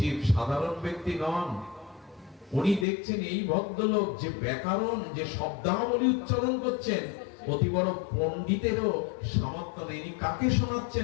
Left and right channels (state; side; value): drops out; right; at 2.9 s